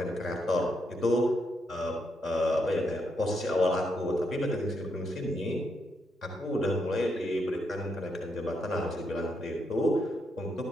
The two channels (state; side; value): normal; both; correlation 0.79